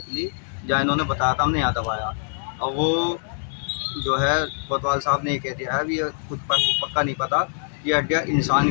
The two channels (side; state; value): right; silent; digital silence